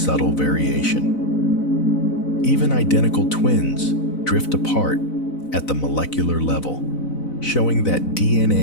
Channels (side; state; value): right; late; 4.0 ms